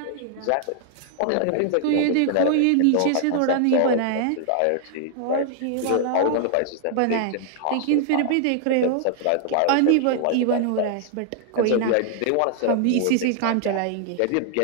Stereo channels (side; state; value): both; different; correlation 0.00